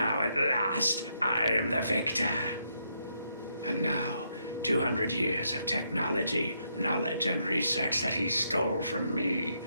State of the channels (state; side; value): inverted; both; correlation -0.77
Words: at last I am the victor. And now, 200 years of technology, knowledge, and research that he stole from me.